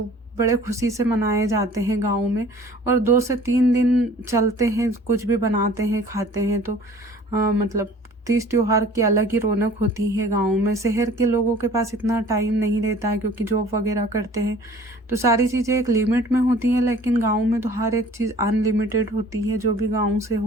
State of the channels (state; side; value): normal; both; correlation 0.49